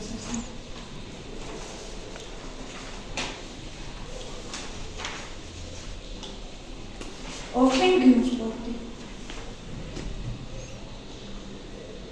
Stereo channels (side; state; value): both; identical; correlation 1.00